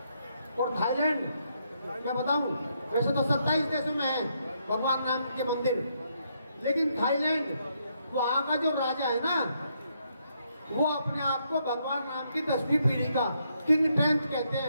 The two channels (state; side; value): inverted; both; correlation -0.76